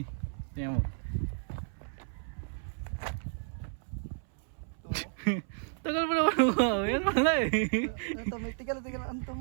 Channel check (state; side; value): silent; left; 56 dB below the other